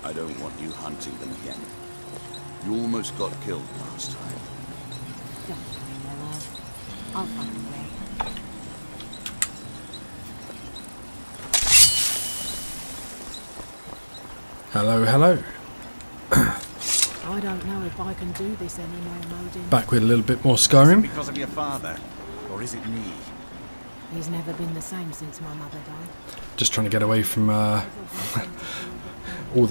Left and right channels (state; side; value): inverted; both; correlation -1.00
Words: I don't want you hunting them again. You almost got killed last time. Don't worry, my love. I'll find a way. Hello, hello. I don't know if I can do this anymore, Modin. Back with a little bit more Is Skyrim. it because of your father, or is it me? He's never been the same since my mother died. Just trying to get away from all